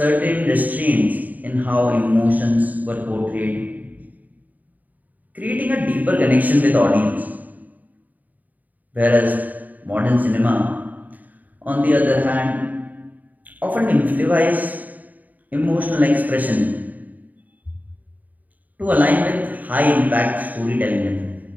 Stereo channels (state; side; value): late; left; 0.079 ms